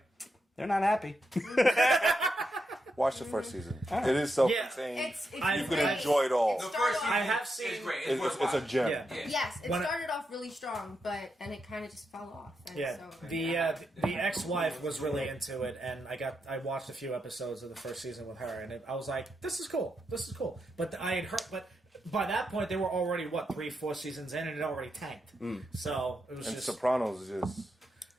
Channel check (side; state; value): both; normal; correlation 0.84